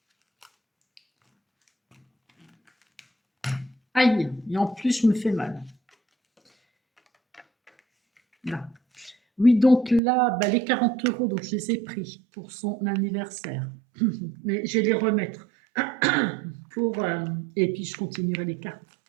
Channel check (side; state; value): left; drops out; at 10.0 s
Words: Aïe! Et en plus, je me fais mal. Là. Oui, donc là, bah, les 40 €, donc je les ai pris pour son anniversaire. Mais je vais les remettre. Pour, et puis, je continuerai les cartes.